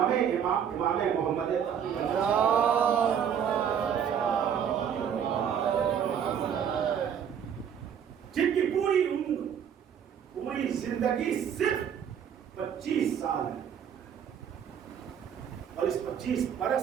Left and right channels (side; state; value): left; quieter; 8.4 dB